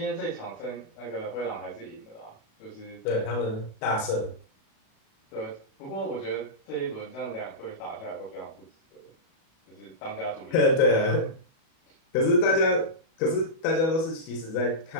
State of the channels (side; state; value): right; late; 37 ms